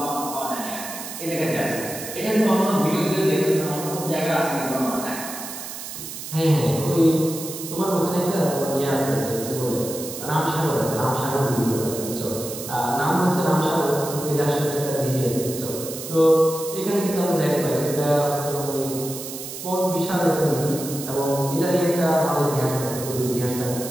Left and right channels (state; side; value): noise; right; hiss, 9 dB below the sound